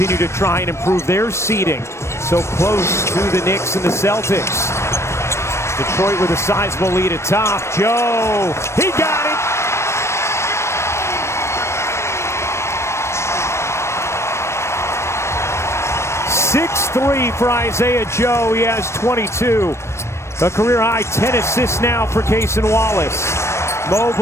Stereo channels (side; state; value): right; late; 0.13 ms